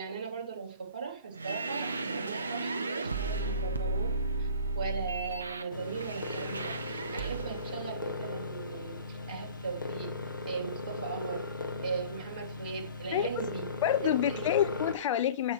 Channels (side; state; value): both; inverted; correlation -0.46